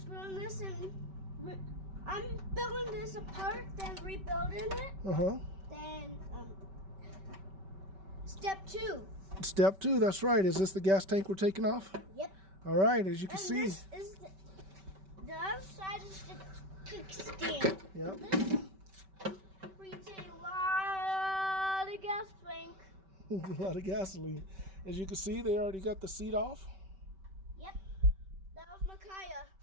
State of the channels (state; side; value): late; left; 5.2 ms